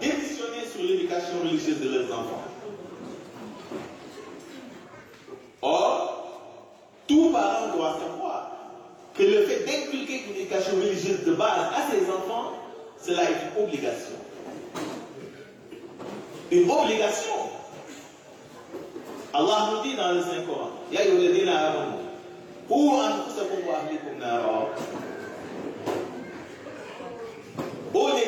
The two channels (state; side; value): identical; both; correlation 1.00